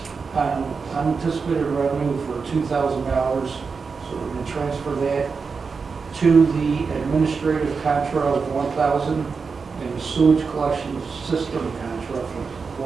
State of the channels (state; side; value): quieter; left; 5.1 dB